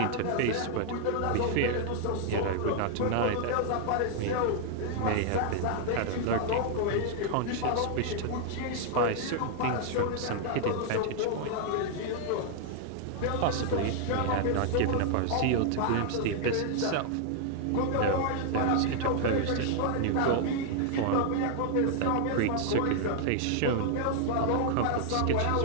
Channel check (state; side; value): different; both; correlation 0.00